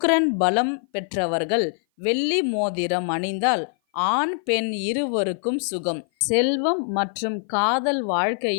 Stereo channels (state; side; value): silent; right; 57 dB below the other